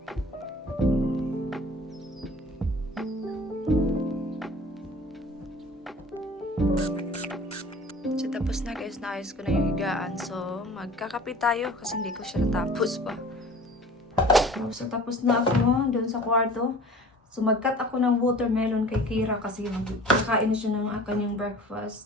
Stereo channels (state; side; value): normal; both; correlation 0.44